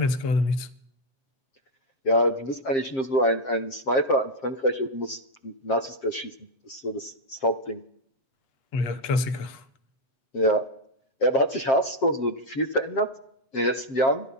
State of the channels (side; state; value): right; late; 7.5 ms